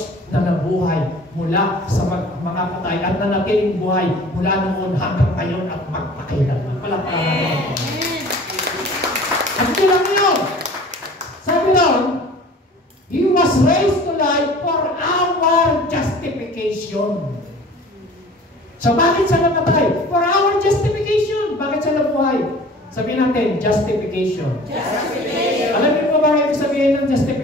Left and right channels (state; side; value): normal; both; correlation 0.45